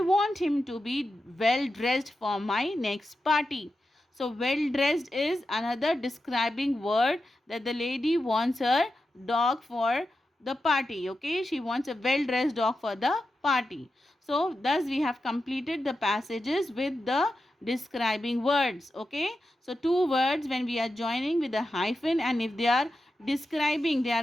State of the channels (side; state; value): both; normal; correlation 0.90